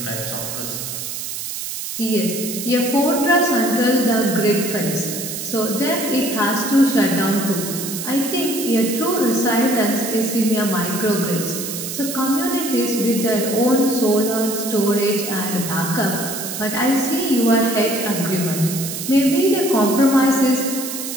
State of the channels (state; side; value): noise; right; hiss, 6 dB below the sound